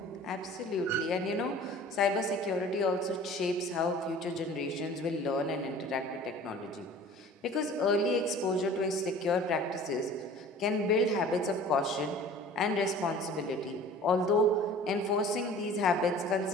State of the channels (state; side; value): normal; both; correlation 0.45